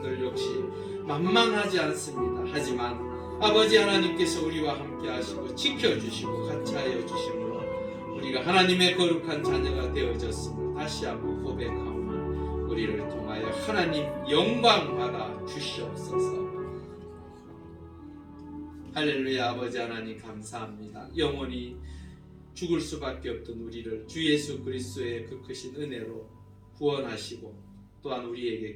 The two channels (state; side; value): identical; both; correlation 1.00